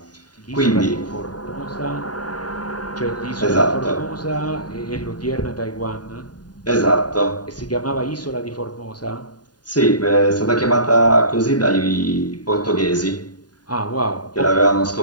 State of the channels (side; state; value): right; late; 0.70 ms